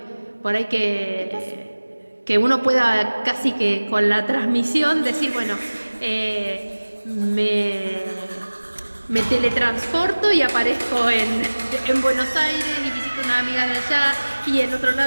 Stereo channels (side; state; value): both; inverted; correlation -1.00